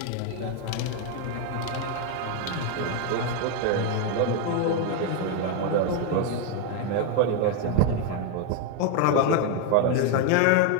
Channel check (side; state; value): both; different; correlation 0.01